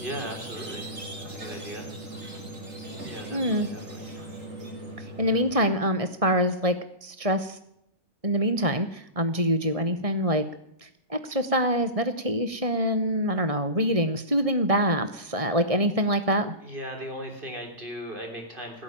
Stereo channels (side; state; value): left; late; 1.6 ms